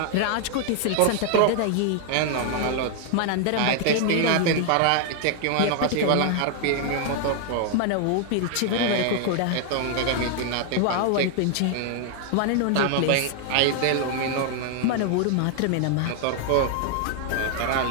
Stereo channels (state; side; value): different; both; correlation 0.00